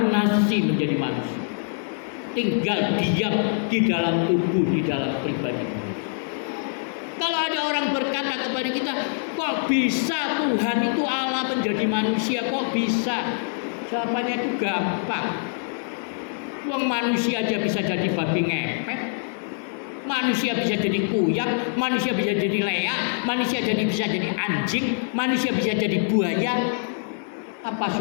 menjadi manusia. Tinggal diam di dalam tubuh, di dalam pribadi. Kalau ada orang berkata kepada kita, kok bisa Tuhan itu Allah menjadi manusia? Kok bisa? Jawabannya itu gampang. Wong manusia aja bisa jadi babi ngepet. Manusia bisa jadi kuyang, manusia bisa jadi leak, manusia bisa jadi anjing, manusia bisa jadi buaya. Apa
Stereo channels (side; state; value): right; silent; 57 dB below the other